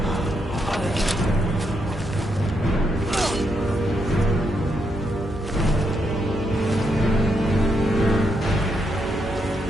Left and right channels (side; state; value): both; normal; correlation 0.79